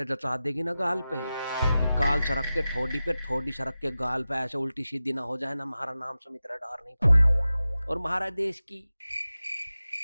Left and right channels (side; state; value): both; inverted; correlation -0.94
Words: जचा देगी ना गाल पे, गाल सरक के ठोडी पे, ठोडी सरक के गाल पे, ऐसे उल्टी सीधी ना हो जाए ना, हमारा नाम सुमित रेडार नहीं पड़ता। और हमारा देश की